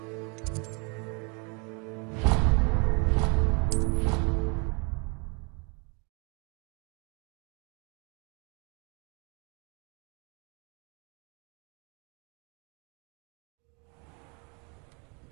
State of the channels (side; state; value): left; quieter; 33.1 dB